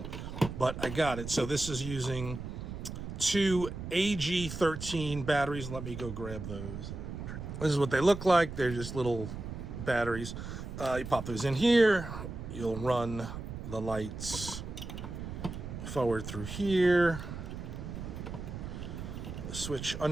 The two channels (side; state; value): right; noise; rumble, 8 dB below the sound